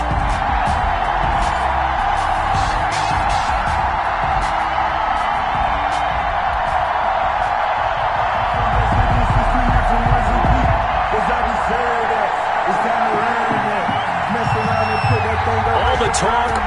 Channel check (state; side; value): identical; both; correlation 1.00